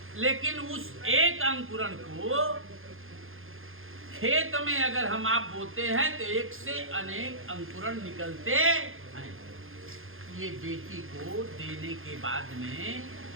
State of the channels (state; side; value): late; left; 0.60 ms